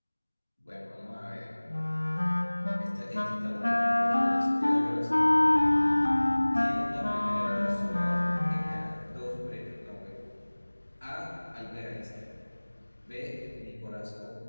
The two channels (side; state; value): both; inverted; correlation -1.00